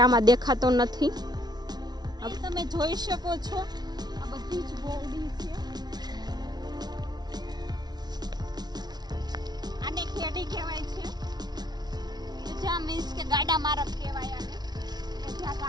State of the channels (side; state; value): left; late; 0.19 ms